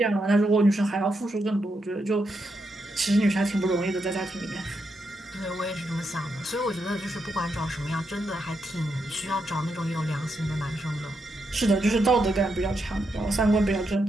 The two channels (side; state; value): both; normal; correlation 0.82